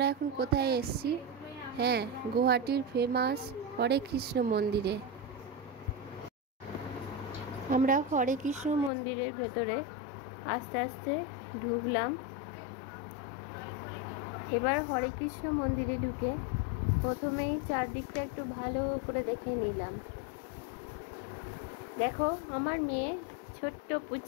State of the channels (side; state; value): right; drops out; at 8.9 s